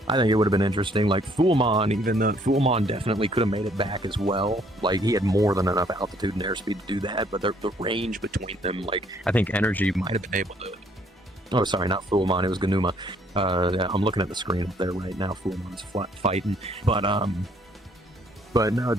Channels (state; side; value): normal; both; correlation 0.65